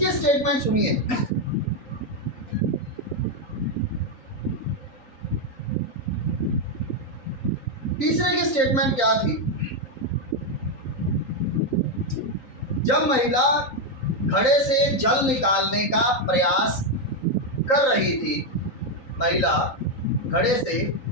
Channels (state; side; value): late; right; 3.9 ms